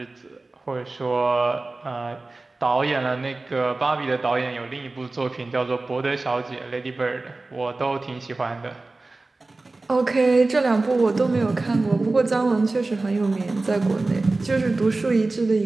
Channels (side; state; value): left; quieter; 3.3 dB